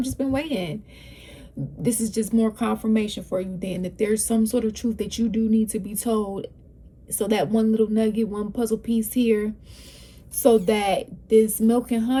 just been waiting. This is just more confirmation for you then that there's some sort of truth that you do need to be told. So that one little nugget, one puzzle piece here, so that this milk and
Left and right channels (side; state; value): both; identical; correlation 1.00